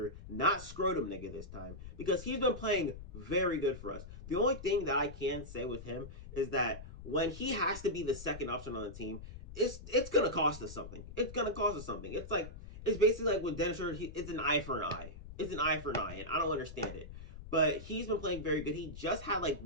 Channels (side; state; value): left; noise; rumble, 13 dB below the sound